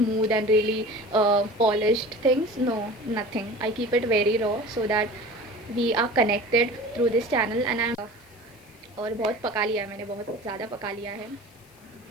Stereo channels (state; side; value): noise; left; hiss, 29 dB below the sound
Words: and really polished things. No, nothing. I keep it very raw so that we are connected through this channel. And I और बहुत पका लिया है मैंने, बहुत ज़्यादा पका लिया है.